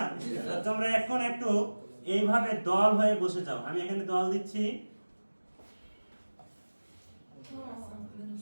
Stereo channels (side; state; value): both; inverted; correlation -1.00